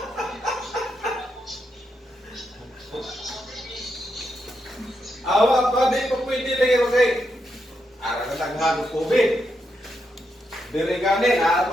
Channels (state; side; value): normal; both; correlation 0.82